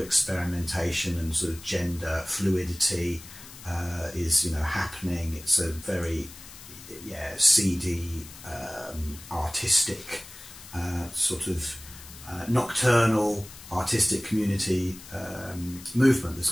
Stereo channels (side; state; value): left; noise; hiss, 17 dB below the sound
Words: and sort of gender fluidity is happening. It's a very seedy, artistic, sort of nocturnal artistic community movement that's